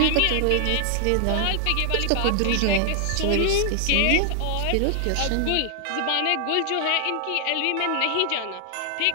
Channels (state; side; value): different; both; correlation 0.00